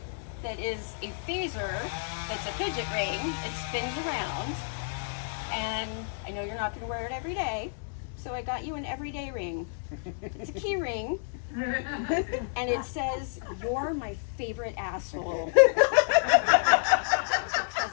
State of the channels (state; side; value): silent; right; digital silence